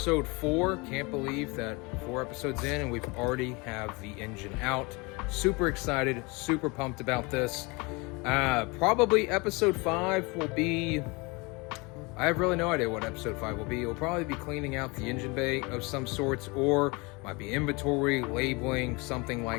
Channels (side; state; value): right; quieter; 27.1 dB